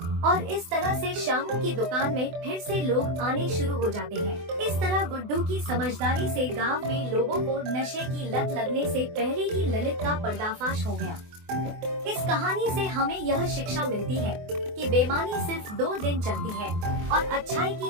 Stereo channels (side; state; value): left; late; 24 ms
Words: और इस तरह से शामू की दुकान में फिर से लोग आने शुरू हो जाते हैं। इस तरह गुड्डू की समझदारी से गांव में लोगों को नशे की लत लगने से पहले ही ललित का पर्दाफाश हो गया। इस कहानी से हमें यह शिक्षा मिलती है कि बेईमानी सिर्फ 2 दिन चलती है और अच्छाई की